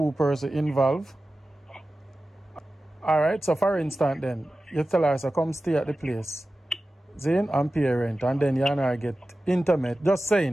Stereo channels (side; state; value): both; normal; correlation 0.95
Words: persons involved. Alright, so for instance then, you tell her, so come stay at the place, Zane, and pay rent, and then you and her get intimate. Just saying,